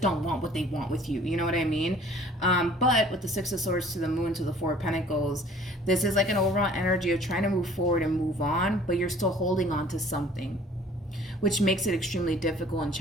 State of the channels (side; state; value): both; normal; correlation 0.52